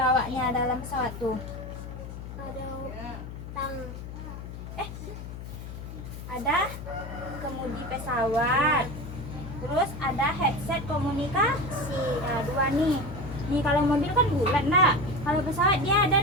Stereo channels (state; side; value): noise; left; hum, 10 dB below the sound